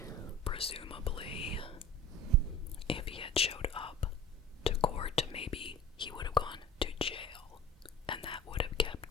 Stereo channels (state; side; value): normal; both; correlation 0.38